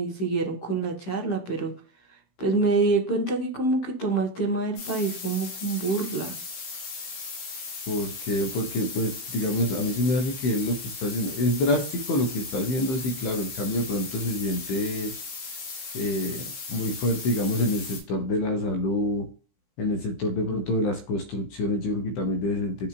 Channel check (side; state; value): right; late; 15 ms